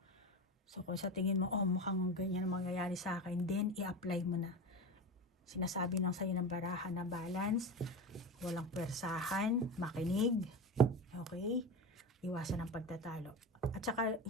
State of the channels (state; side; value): normal; both; correlation 0.24